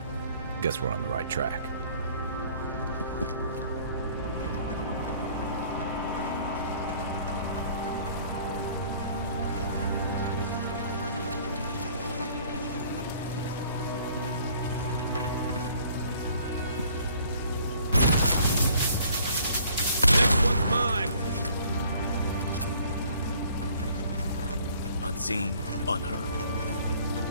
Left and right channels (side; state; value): both; inverted; correlation -0.56